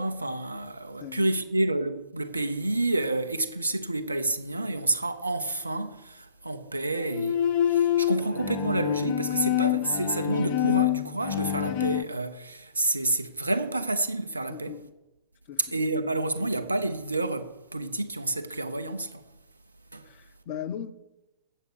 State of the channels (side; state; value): both; inverted; correlation -0.63